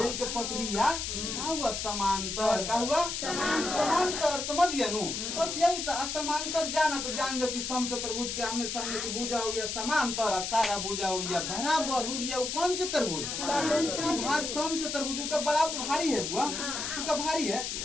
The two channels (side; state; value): left; noise; hiss, 3 dB below the sound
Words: के पटरिया क्या हुआ, समांतर क्या हुआ, समांतर। समझ गया नु, बस यही था। समांतर जाना तो जान जो कि सम चतुर्भुज के आमने सामने की भुजा हो गया समांतर, सारा भुजा हो गया बराबर हो गया। वो कौन चतुर्भुज, भार सम चतुर्भुज का बराबर भारी है बुआ, उसका भारी है।